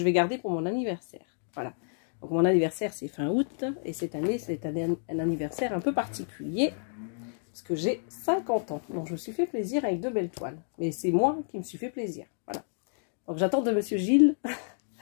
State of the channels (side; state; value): right; silent; digital silence